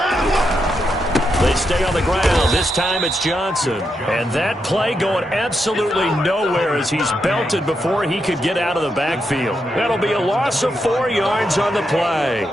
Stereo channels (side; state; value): both; normal; correlation 0.83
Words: They stay on the ground. This time it's Johnson. And that play going absolutely nowhere as he's belted before he could get out of the backfield. That'll be a loss of 4 yards on the play.